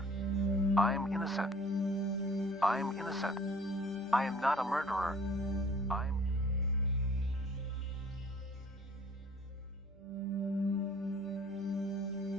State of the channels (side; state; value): right; noise; hum, 26 dB below the sound